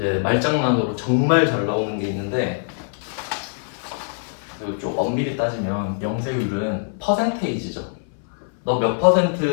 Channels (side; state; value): right; silent; 60 dB below the other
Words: 말장난으로 정말 잘 나오는 게 있는데 좀 엄밀히 따지면 영세율은 퍼센테이지죠. 너 몇